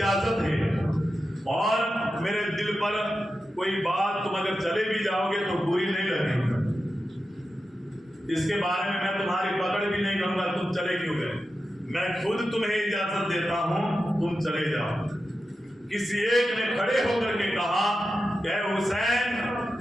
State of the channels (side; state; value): both; normal; correlation 0.91